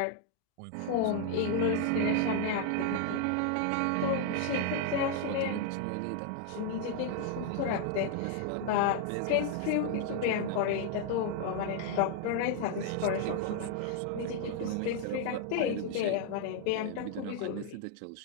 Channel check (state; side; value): different; both; correlation 0.00